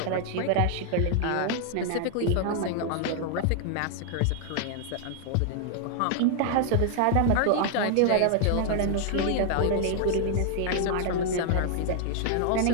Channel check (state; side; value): different; both; correlation 0.00